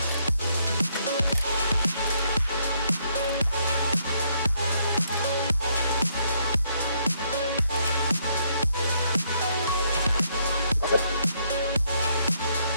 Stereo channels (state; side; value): inverted; both; correlation -0.72